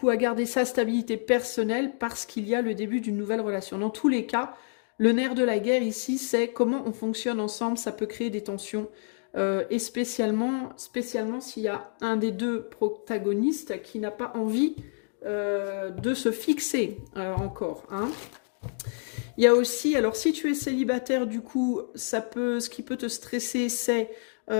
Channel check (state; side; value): silent; right; digital silence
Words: à garder sa stabilité personnelle parce qu'il y a le début d'une nouvelle relation. Dans tous les cas, le nerf de la guerre ici, c'est comment on fonctionne ensemble. Ça peut créer des tensions. Et spécialement s'il y a un des deux protagonistes qui n'a pas envie de se fixer encore. Il y a aussi, alors si tu es célibataire, du coup, ce qui peut te stresser, c'est